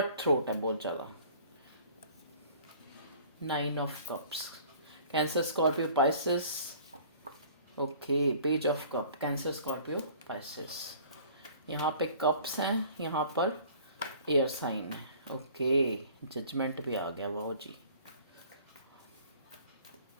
थ्रोट है बहुत ज़्यादा। Nine of cups, cancer Scorpio Pisces. Okay, page of cup, cancer Scorpio Pisces. यहाँ पे कप्स हैं, यहाँ पर एयर साइन है। ओके, जजमेंट भी आ गया, वाह जी।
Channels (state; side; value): inverted; both; correlation -0.50